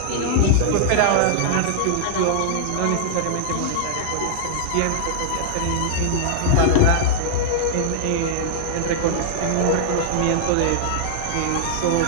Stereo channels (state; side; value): different; both; correlation -0.01